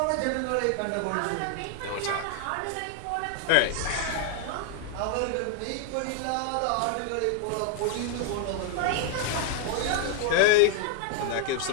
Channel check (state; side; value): different; both; correlation 0.00